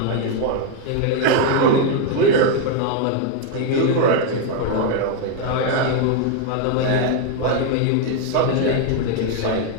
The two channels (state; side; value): different; both; correlation 0.01